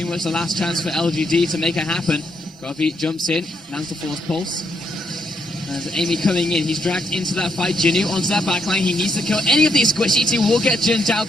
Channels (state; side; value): normal; both; correlation 0.76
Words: much the last chance for LGD to make it happen. Godby jumps in, lands the Force Pulse. As Amy coming in, he's dragged into that fight. Jinu onto that backline. He needs to kill any of these squishy. He will get Jin